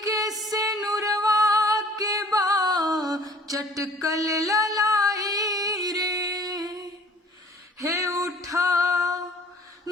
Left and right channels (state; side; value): normal; both; correlation 0.51